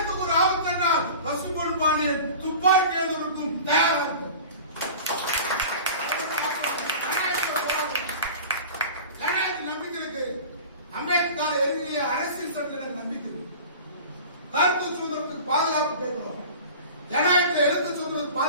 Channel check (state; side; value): inverted; both; correlation -0.38